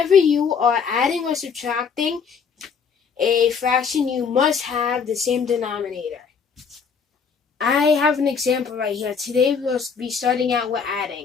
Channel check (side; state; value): right; quieter; 6.1 dB